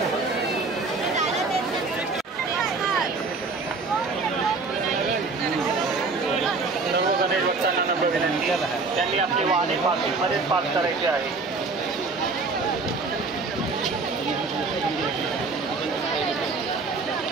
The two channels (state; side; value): quieter; left; 4.0 dB